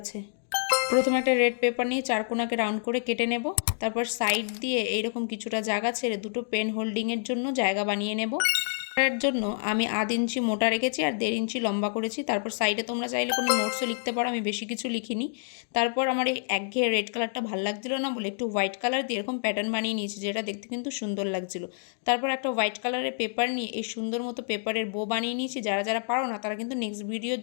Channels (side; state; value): right; silent; digital silence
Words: প্রথমে একটা রেড পেপার নিয়ে চারকোনাকে রাউন্ড করে কেটে নেব। তারপর সাইড দিয়ে এইরকম কিছুটা জায়গা ছেড়ে দুটো পেন হোল্ডিংয়ের জন্য জায়গা বানিয়ে নেব। এর জন্য আমি 1/2 ইঞ্চি মোটা রেখেছি আর 1.5 ইঞ্চি লম্বা করেছি। তারপর সাইডে তোমরা চাইলে কোনো নোটসও লিখতে পারো, আমি বেশি কিছু লিখিনি। তারপর আমার এই একঘেয়ে রেড কালারটা ভালো লাগছিল না বলে একটু হোয়াইট কালার দিয়ে এরকম প্যাটার্ন বানিয়ে নিয়েছি, যেটা দেখতে কিন্তু সুন্দর লাগছিল। তারপর একটা হোয়াইট কালারের পেপার নিয়ে এই সুন্দর মতো পেপারের বো বানিয়ে নিয়েছি। যারা যারা পারো না তারা কিন্তু নেক্সট ভিডিওর